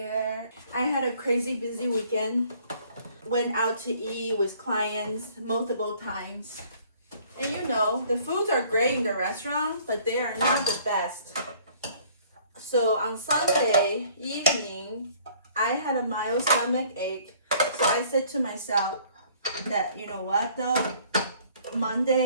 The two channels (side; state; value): both; inverted; correlation -0.57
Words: I had a crazy busy weekend. Went out to eat with clients multiple times. And you know, the foods are great in the restaurant, but they are not the best. So on Sunday evening, I had a mild stomach ache. So I said to myself that, you know what though,